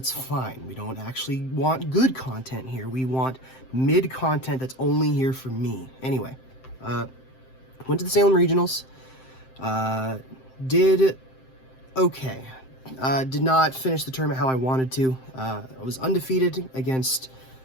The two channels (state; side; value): late; right; 7.7 ms